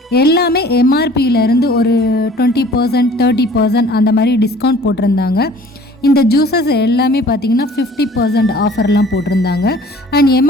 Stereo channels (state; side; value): normal; both; correlation 0.50